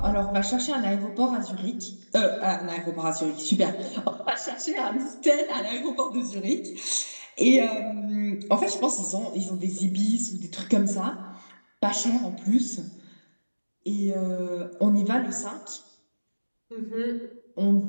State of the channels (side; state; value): both; inverted; correlation -1.00